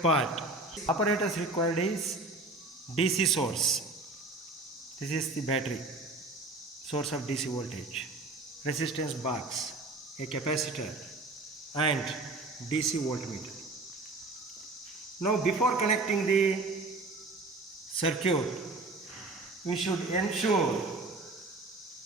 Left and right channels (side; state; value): left; quieter; 3.1 dB